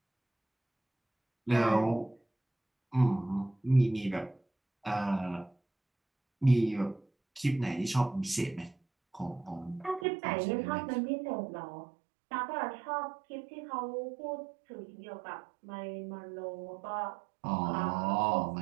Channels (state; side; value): drops out; left; at 10.1 s